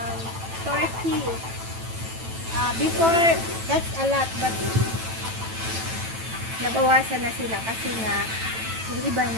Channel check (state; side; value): late; left; 9.1 ms